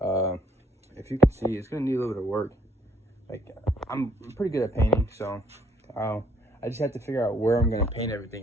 If you can see, it's gonna need a little bit of work. Like, I'm pretty good at painting, so I just have to figure out where I'm gonna paint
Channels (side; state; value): both; normal; correlation 0.66